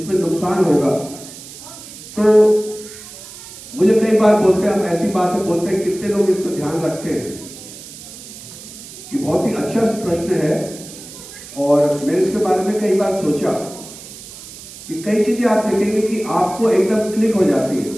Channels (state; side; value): noise; right; hiss, 15 dB below the sound